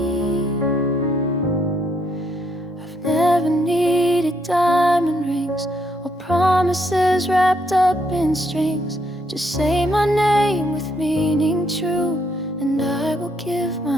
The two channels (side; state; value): both; normal; correlation 0.73